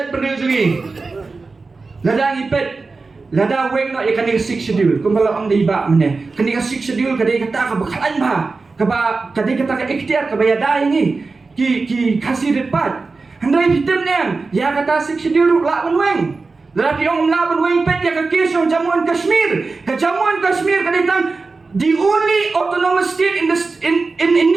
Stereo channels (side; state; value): left; quieter; 4.0 dB